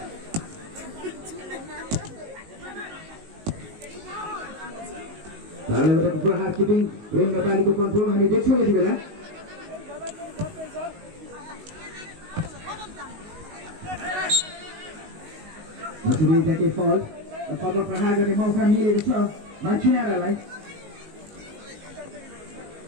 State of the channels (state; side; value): late; left; 19 ms